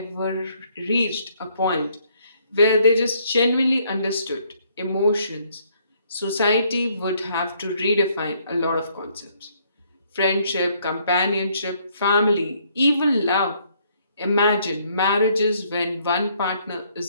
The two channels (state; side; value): inverted; both; correlation -0.67